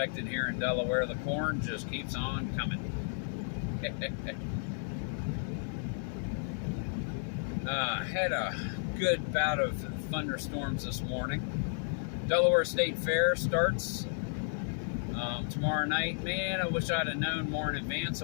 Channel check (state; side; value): silent; right; digital silence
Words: here in Delaware, the corn just keeps on coming. Had a good bout of thunderstorms this morning. Delaware State Fair starts tomorrow night. Man, I wish I'd have known more in advance.